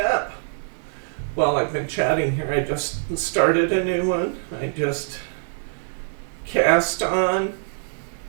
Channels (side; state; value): left; silent; 63 dB below the other